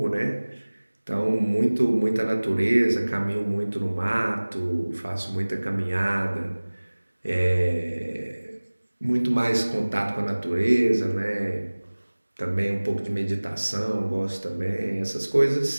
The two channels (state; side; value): inverted; both; correlation -1.00